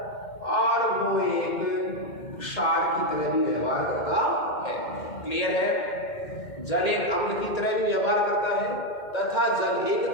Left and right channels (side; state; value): right; late; 2.1 ms